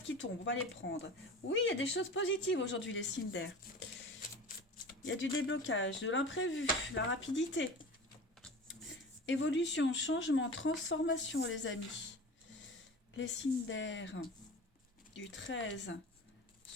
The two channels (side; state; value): both; normal; correlation 0.35